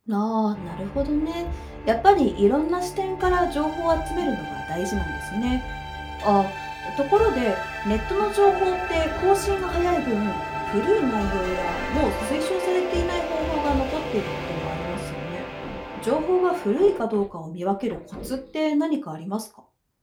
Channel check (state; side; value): identical; both; correlation 1.00